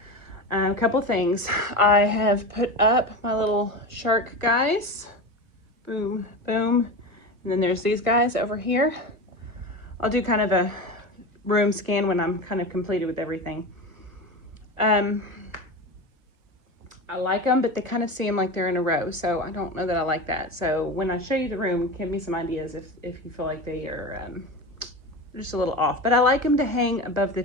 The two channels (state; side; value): late; left; 1.3 ms